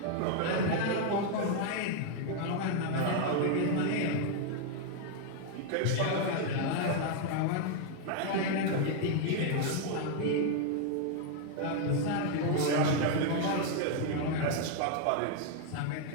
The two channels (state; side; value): different; both; correlation 0.00